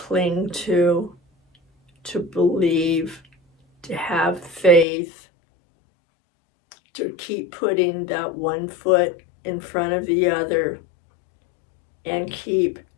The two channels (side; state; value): right; drops out; at 4.9 s